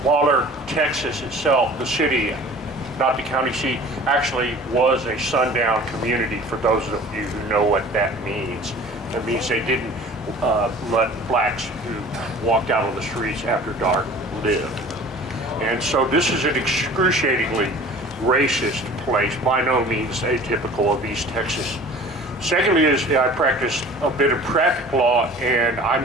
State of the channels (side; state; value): both; normal; correlation 0.44